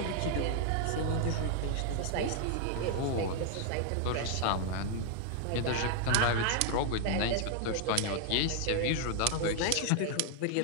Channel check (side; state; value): both; different; correlation 0.00